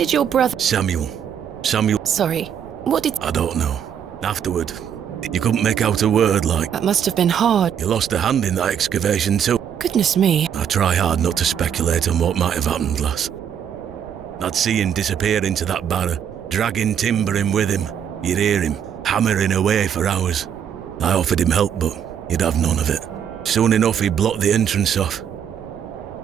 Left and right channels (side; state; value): left; quieter; 8.6 dB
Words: your brother... Samuel. Sorry, what did... I don't know. Afterward, you couldn't make out a word like... That must have been hard. You lost a hand in that excavation too. Goodness me. I try hard not to speculate on what might have happened, lass. I'd see him disappear into that barrow, dragging timber in with him. You'd hear him hammering away for hours. I offered him help, but he'd have none of it. Soon enough, he'd blocked the entrance off.